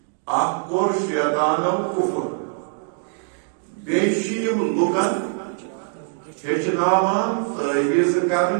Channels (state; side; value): silent; left; digital silence